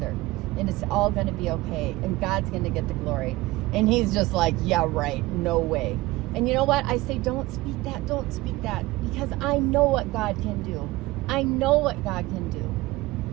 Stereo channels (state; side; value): quieter; left; 19.4 dB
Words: And it's all going to be okay. And God's going to get the glory. And he's just like, yeah, right, no way. And you know what? I say, don't speak that, because I know what God can do. I know what God can